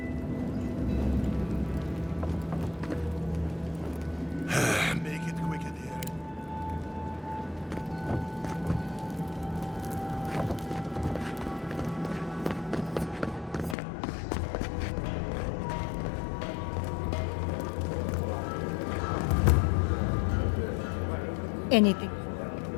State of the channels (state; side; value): drops out; right; at 13.8 s